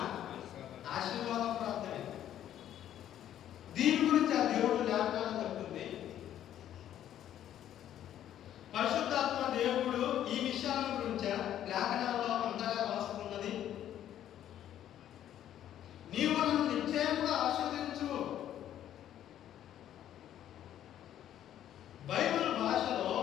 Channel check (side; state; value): right; quieter; 11.2 dB